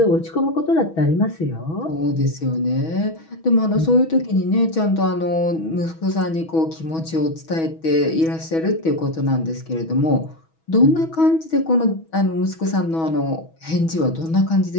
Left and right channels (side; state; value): right; late; 6.2 ms